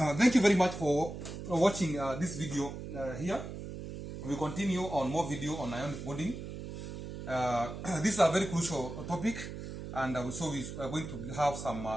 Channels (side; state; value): right; noise; hum, 9 dB below the sound